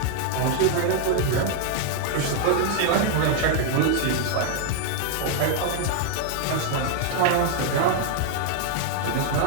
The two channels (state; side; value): different; both; correlation 0.00